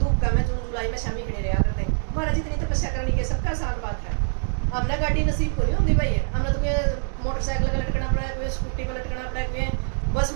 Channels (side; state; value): left; silent; 62 dB below the other